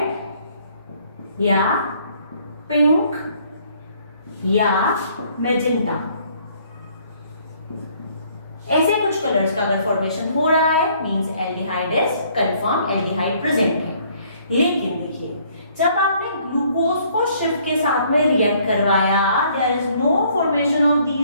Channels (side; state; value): both; inverted; correlation -0.62